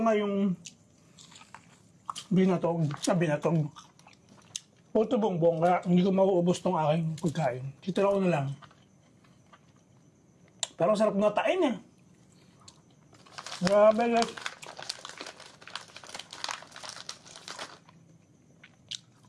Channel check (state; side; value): identical; both; correlation 1.00